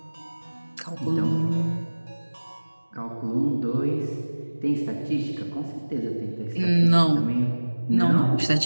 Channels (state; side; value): inverted; both; correlation -1.00